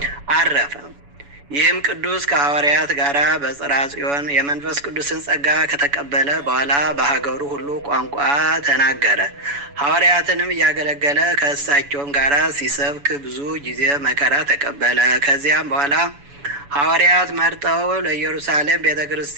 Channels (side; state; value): left; late; 7.0 ms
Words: አረፈ። ይህም ቅዱስ ከሐዋርያት ጋር በጽርሐ ጽዮን የመንፈስ ቅዱስን ጸጋ ከተቀበለ በኋላ በሀገሩ ሁሉ ቋንቋ ተናገረ። ሐዋርያትንም እያገለገለ ከእሳቸውም ጋር ሲሰብክ ብዙ ጊዜ መከራ ተቀበለ። ከዚያም በኋላ ሐዋርያት መርጠው ለኢየሩሳሌም ቤተ